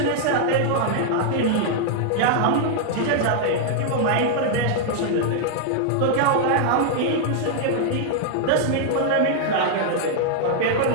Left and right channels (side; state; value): both; different; correlation -0.01